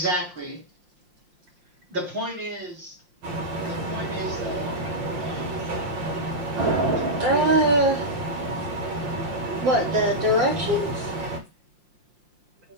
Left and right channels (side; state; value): left; late; 5.7 ms